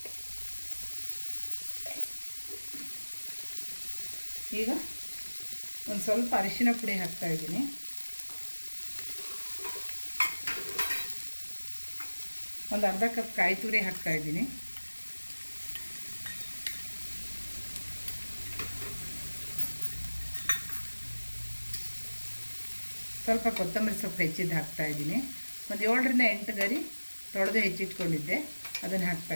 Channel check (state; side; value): inverted; both; correlation -1.00